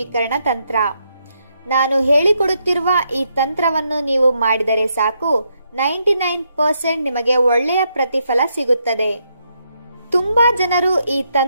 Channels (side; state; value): both; inverted; correlation -0.79